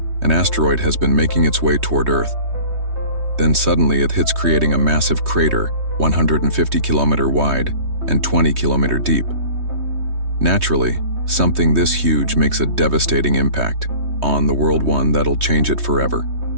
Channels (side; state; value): left; late; 3.2 ms